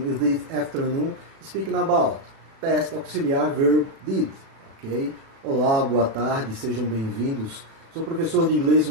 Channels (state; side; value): late; left; 36 ms